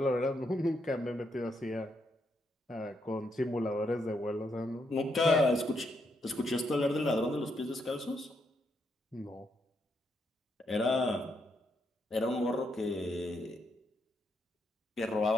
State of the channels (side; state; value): both; normal; correlation 0.78